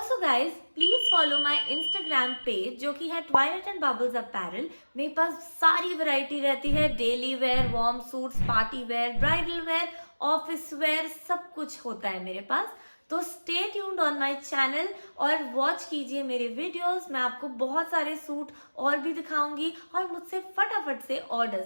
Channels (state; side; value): inverted; both; correlation -1.00